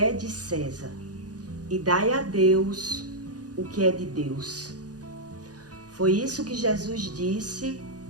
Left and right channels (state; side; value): late; left; 0.68 ms